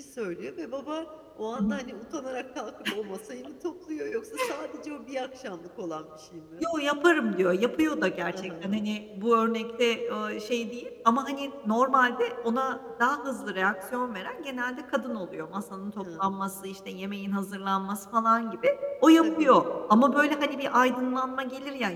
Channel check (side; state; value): both; identical; correlation 1.00